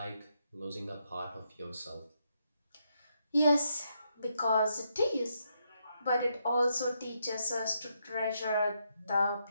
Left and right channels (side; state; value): both; inverted; correlation -0.79